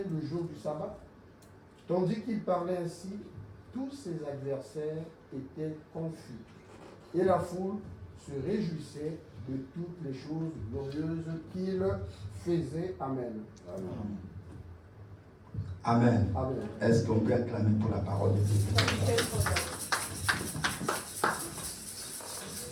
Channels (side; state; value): both; identical; correlation 1.00